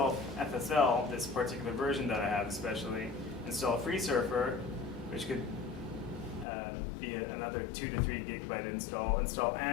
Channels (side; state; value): right; drops out; at 6.5 s